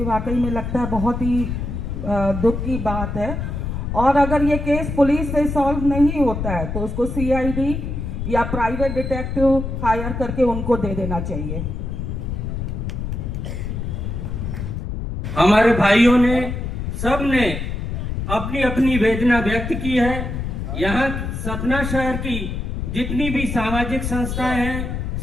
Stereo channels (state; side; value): noise; left; rumble, 4 dB below the sound